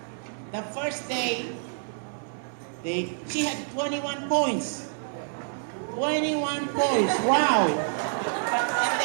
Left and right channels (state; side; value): silent; left; 60 dB below the other